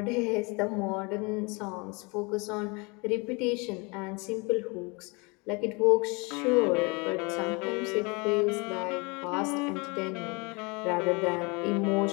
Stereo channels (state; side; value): quieter; right; 28.9 dB